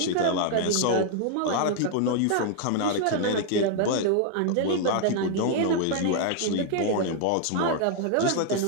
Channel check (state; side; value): different; both; correlation 0.00